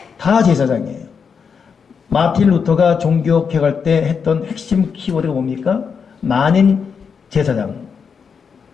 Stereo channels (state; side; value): quieter; right; 6.2 dB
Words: 다 제사장이에요. 마틴 루터가 종교개혁할 때 했던 핵심 키워드가 뭡니까? 만인 제사장.